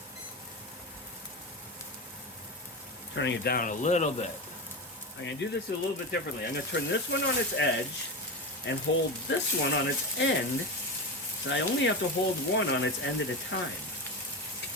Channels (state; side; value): normal; both; correlation 0.20